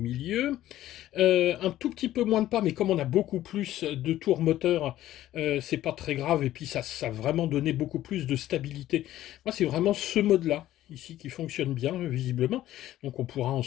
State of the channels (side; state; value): right; quieter; 13.8 dB